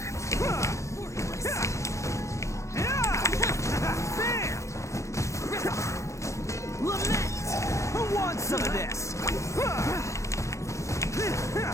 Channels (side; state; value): right; late; 0.15 ms